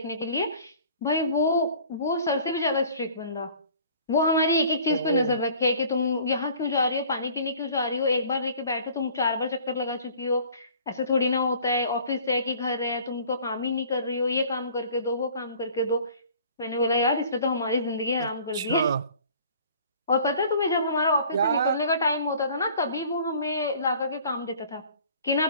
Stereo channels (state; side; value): inverted; both; correlation -0.50